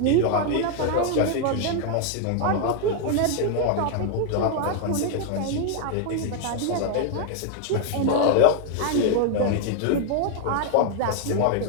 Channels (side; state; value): both; different; correlation 0.00